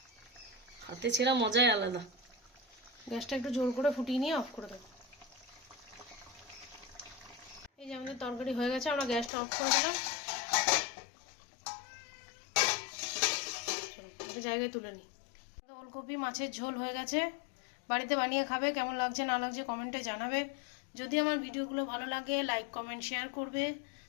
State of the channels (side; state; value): right; drops out; at 9.3 s